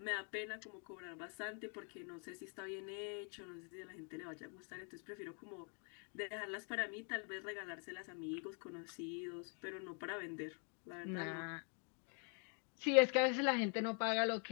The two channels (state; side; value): quieter; right; 40.0 dB